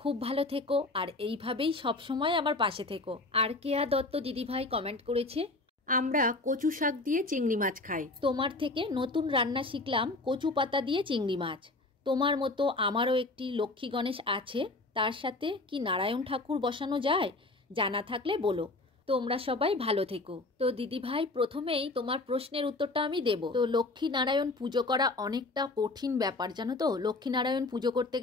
ভালো থেকো আর এইভাবেই সবসময় আমার পাশে থেকো। আর কেয়া দত্ত দিদিভাই কমেন্ট করেছে, আমরা কচু শাক দিয়ে চিংড়ি মাছ খাই। তোমার থেকে নতুন রান্না শিখলাম, কচু পাতা দিয়ে চিংড়ি মাছ। তোমার মতো আমারও একটি লক্ষ্মী গণেশ আছে, তার সাথে কি নারায়ণ ঠাকুর বসানো যায়? জানা থাকলে বলো। তোমরা সবাই ভালো থেকো। তো দিদিভাই, প্রথমেই তোমার প্রশ্নের উত্তরটা আমি দেব। তো লক্ষ্মী নারায়ণ পুজো করা অনেকটা কঠিন ব্যাপার, জানো তো। লক্ষ্মী নারায়ণ পুজো করতে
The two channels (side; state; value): right; quieter; 3.1 dB